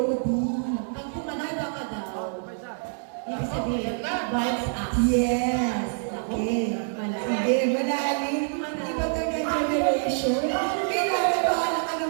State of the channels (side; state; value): left; silent; digital silence